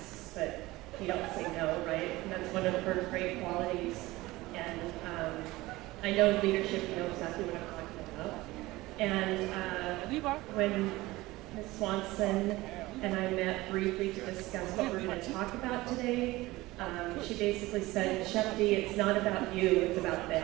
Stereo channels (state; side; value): quieter; left; 19.4 dB